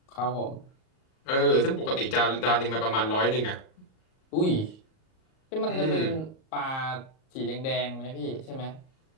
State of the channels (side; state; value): right; late; 38 ms